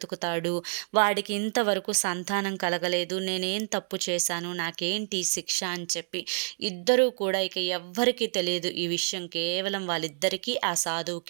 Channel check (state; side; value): silent; left; digital silence